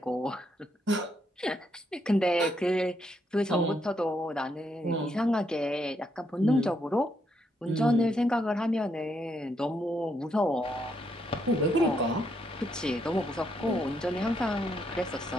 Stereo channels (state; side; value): normal; both; correlation 0.76